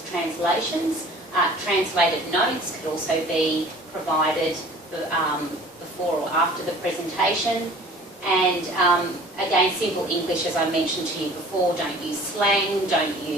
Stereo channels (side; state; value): both; normal; correlation 0.47